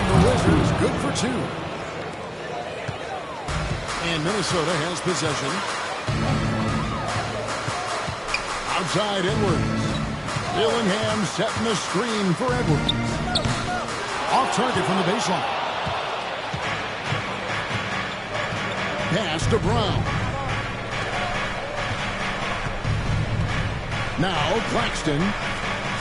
the Wizards good for 2. And Minnesota has possession. Outside Edwards. Dillingham setting the screen for Edwards. Off target from the baseline. Pass to Brown. Now Claxton.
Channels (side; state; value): both; identical; correlation 1.00